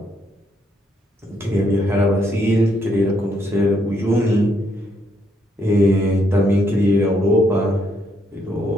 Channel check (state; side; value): normal; both; correlation 0.74